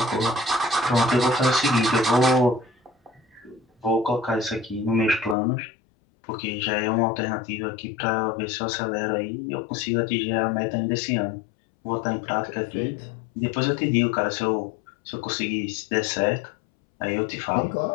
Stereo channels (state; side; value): drops out; right; at 5.4 s